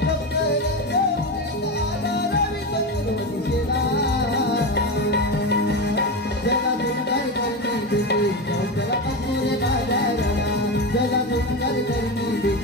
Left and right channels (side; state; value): both; normal; correlation 0.19